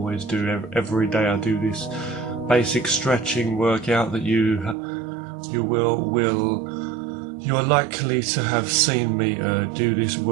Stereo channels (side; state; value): left; drops out; at 4.8 s